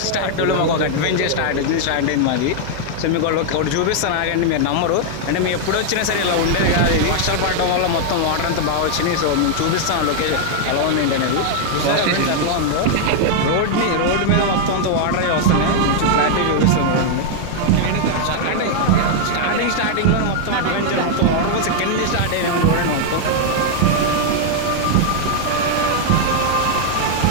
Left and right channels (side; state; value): both; different; correlation -0.01